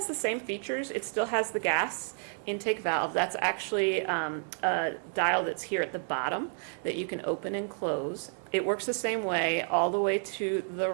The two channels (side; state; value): left; silent; 57 dB below the other